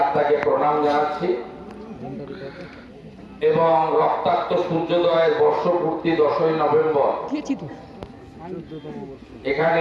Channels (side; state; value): both; identical; correlation 1.00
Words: আত্মাকে প্রণাম জানাচ্ছি এবং রক্তাক্ত সূর্যোদয়ের বর্ষপূর্তি 10ই নভেম্বর